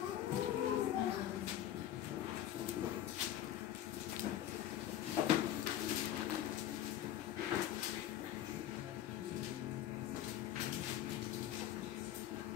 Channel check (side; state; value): right; quieter; 11.9 dB